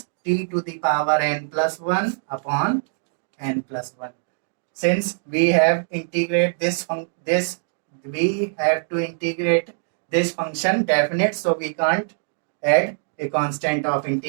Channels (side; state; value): left; silent; digital silence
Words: t to the power n plus 1 upon n plus 1. Since we have integrate we have to integrate this function definite, so we can't add a constant of